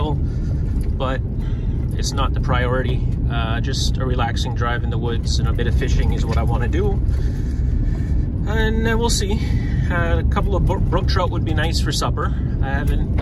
but it's not the priority. Just a relaxing drive in the woods and a bit of fishing is what I want to do, and we'll see. A couple of brook trout would be nice for supper. I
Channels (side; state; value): both; identical; correlation 1.00